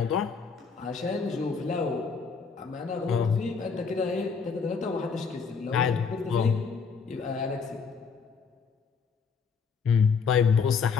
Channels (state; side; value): quieter; right; 5.6 dB